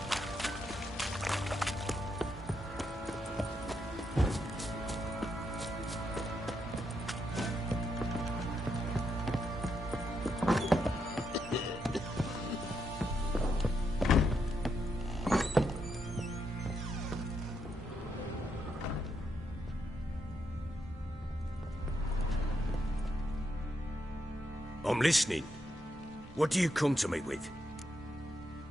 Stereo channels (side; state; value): both; normal; correlation 0.80